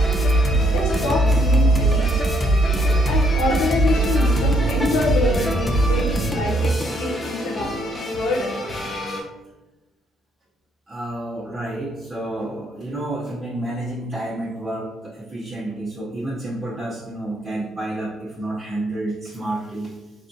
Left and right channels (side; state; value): both; normal; correlation 0.71